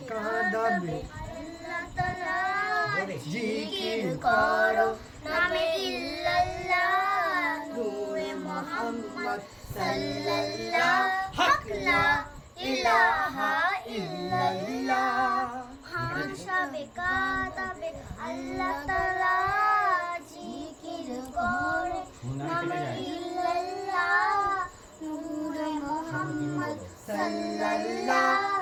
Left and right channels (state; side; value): identical; both; correlation 1.00